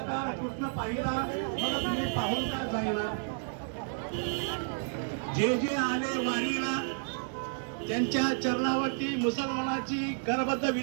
कृष्ण पाहिला, मला तुम्ही पाहून का जाईना? जे जे आले वारीला त्यांच्या चरणावरती मुसलमानाची करबद्ध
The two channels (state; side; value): silent; left; digital silence